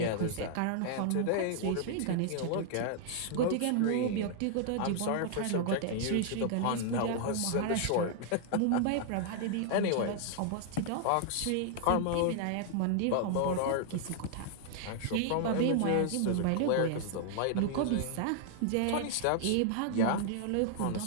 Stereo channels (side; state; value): both; different; correlation 0.00